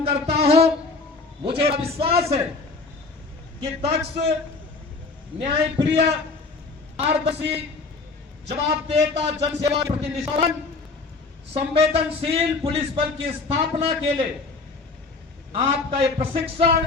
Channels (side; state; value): right; quieter; 3.9 dB